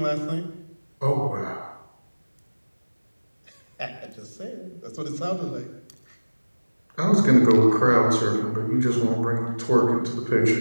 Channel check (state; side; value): inverted; both; correlation -1.00